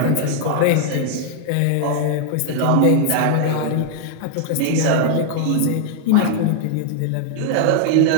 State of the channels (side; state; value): both; different; correlation 0.00